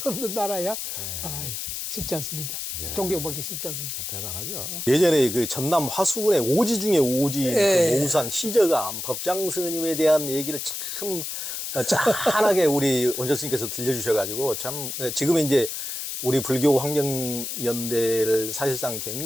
없는 나라야. 아유, 쉽지 않습니다. 존경받기 쉽지 않습니다. 대단하죠. 예전에 그 전남 화수군의 오지 중에 오지, 그 모우산 시저감 법장 스님에 대한 얘기를 참 짠하게 우리 원전 스님께서 들려주셔가지고 참 지금은 이제 우리 불교 환경연대를 사실상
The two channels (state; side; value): noise; left; hiss, 5 dB below the sound